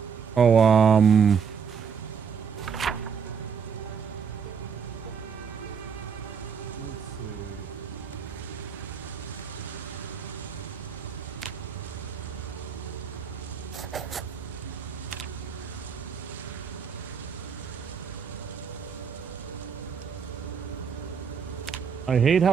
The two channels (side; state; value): left; quieter; 6.6 dB